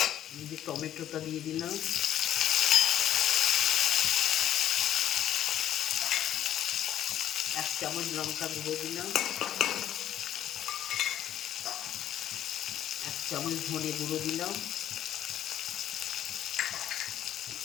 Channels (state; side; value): quieter; right; 11.4 dB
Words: এই যে টমেটোটা দিয়ে দিলাম, এক চামচ লঙ্কা গুঁড়ো দিলাম, এক চামচ ধনে গুঁড়ো দিলাম,